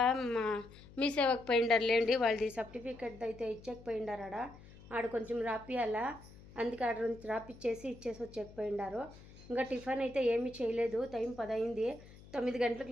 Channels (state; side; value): noise; left; hum, 20 dB below the sound